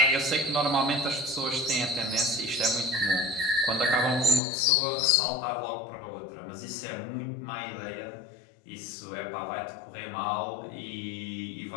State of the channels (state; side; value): drops out; right; at 4.4 s